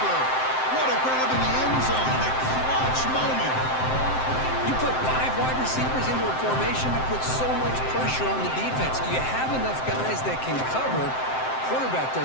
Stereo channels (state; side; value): late; right; 7.7 ms